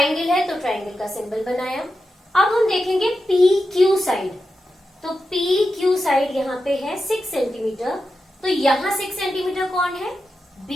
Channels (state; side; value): normal; both; correlation 0.89